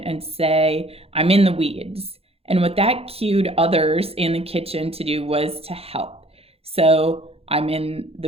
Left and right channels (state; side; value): late; left; 0.29 ms